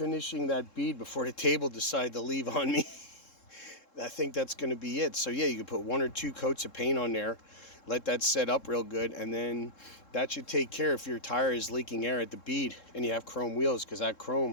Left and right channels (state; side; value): late; right; 3.7 ms